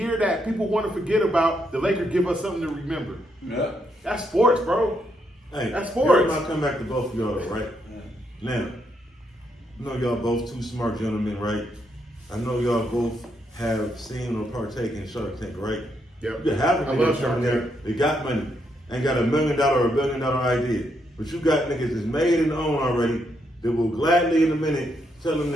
that people want to forget about, the Lakers give us something to remember. Yeah. That's sports, bro. Hey, That's sports. I'll come back to both of y'all, right? Now, I know y'all both two smart gentlemen, right? I know y'all both have seen or partaken in Shark Tank, right? Yep. You have I love Shark Tank. They got money. Ain't got $1 million or $1 billion idea. But you got niggas that's made and owned already that will gladly in a minute tell them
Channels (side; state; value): both; normal; correlation 0.77